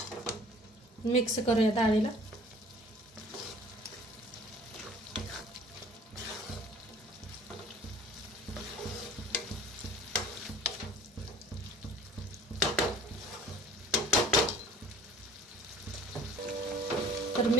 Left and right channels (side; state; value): both; normal; correlation 0.48